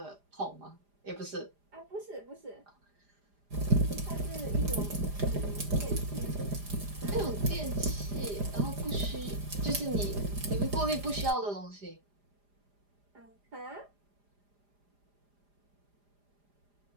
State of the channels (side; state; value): left; late; 4.9 ms